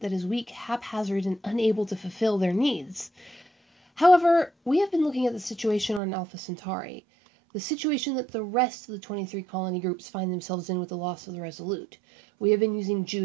that is weak, haphazard, and unable to fulfill their needs? However, we have been looking at the situation on Alpha Centauri, the situation that the rest of the 23 colony groups find themselves in with the loss of the Resolute. We have been using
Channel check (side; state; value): left; drops out; at 6.0 s